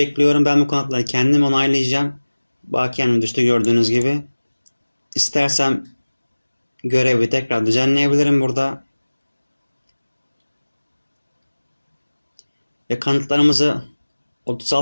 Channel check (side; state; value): both; inverted; correlation -1.00